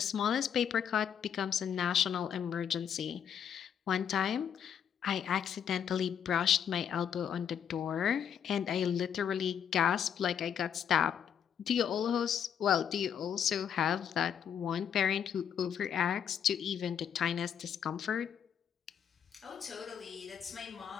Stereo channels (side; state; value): right; quieter; 8.4 dB